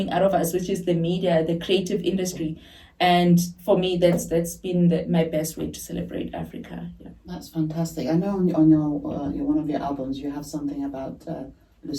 out of us, which is the media, the creative industry. And for me, that's been my best way to celebrate Africa. Yeah. That's fantastic. I know on your one of your albums you have something about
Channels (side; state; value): both; identical; correlation 1.00